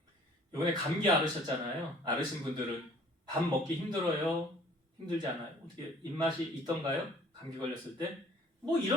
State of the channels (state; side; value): normal; both; correlation 0.54